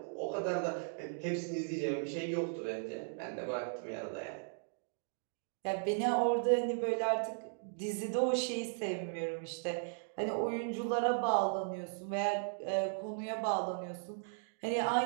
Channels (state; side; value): silent; left; digital silence